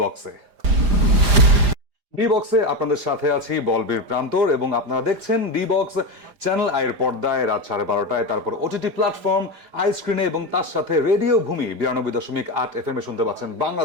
বক্সে। ডি বক্সে আপনাদের সাথে আছি বলবীর প্রান্তর, এবং আপনারা দেখছেন ডি বক্স চ্যানেল আইয়ের পর্দায় রাত 12:30টায়, তারপর ওটিটি প্ল্যাটফর্ম আই স্ক্রিনে, এবং তার সাথে রেডিও ভূমি 92.8 FM এ শুনতে পাচ্ছেন বাংলা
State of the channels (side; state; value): left; late; 4.9 ms